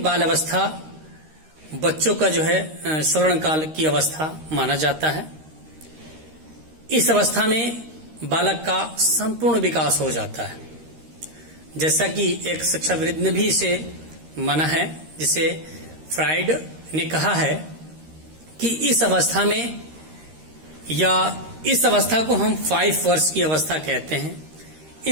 बाल अवस्था बच्चों का जो है स्वर्ण काल की अवस्था माना जाता है। इस अवस्था में बालक का संपूर्ण विकास हो जाता है, जैसा कि एक शिक्षाविद ने भी इसे माना है, जिसे फ्राइड ने कहा है कि इस अवस्था में या इस अवस्था को हम 5 वर्ष की अवस्था कहते हैं।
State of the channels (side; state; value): left; late; 13 ms